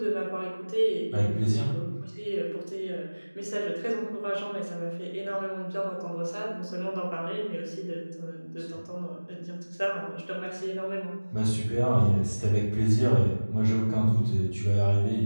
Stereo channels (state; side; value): inverted; both; correlation -1.00